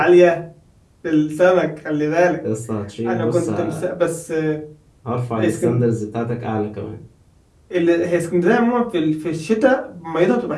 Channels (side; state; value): both; identical; correlation 1.00